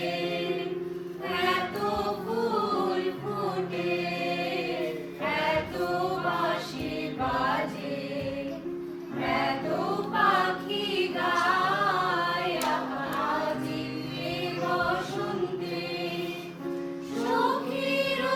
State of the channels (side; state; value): both; identical; correlation 1.00